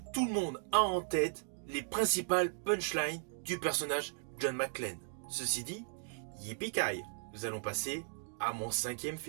tout le monde a en tête les principales punchlines du personnage John McClane. Ceci dit, yippee-ki-yay, nous allons passer à mon 5e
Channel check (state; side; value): silent; left; 53 dB below the other